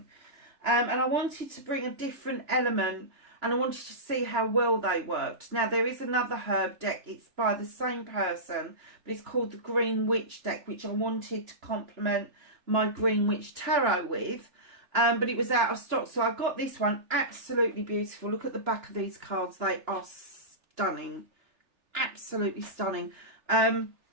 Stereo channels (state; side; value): late; left; 2.9 ms